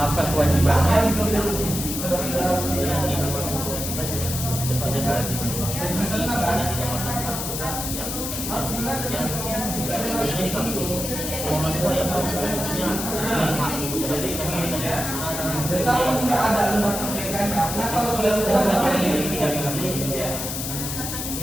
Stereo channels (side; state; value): left; noise; hiss, 4 dB below the sound